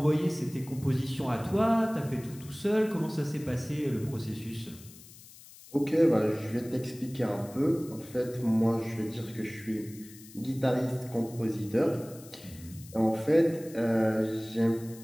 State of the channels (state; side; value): noise; left; hiss, 20 dB below the sound